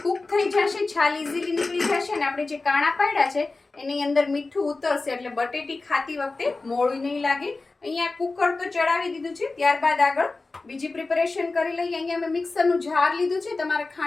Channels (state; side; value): quieter; right; 3.5 dB